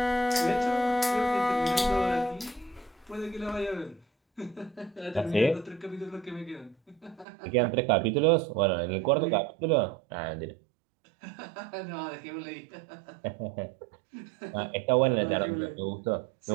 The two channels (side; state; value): left; drops out; at 7.2 s